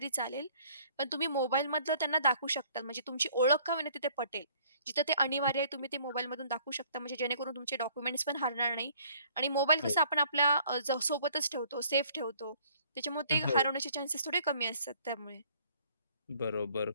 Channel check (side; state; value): both; inverted; correlation -0.59